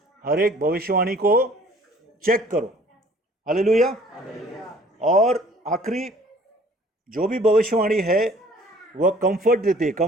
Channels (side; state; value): both; normal; correlation 0.54